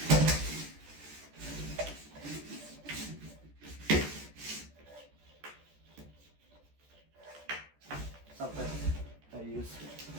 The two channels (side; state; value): left; late; 14 ms